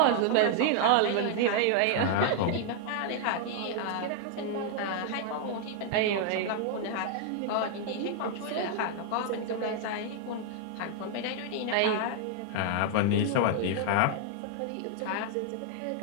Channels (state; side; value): different; both; correlation 0.00